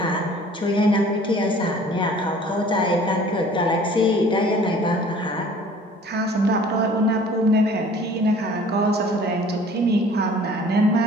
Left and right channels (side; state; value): both; normal; correlation 0.50